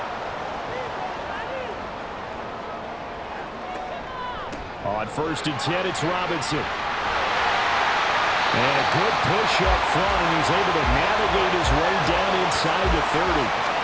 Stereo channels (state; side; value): identical; both; correlation 1.00